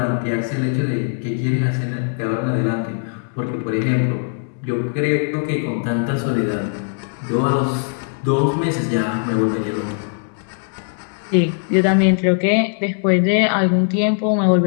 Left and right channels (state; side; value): silent; right; digital silence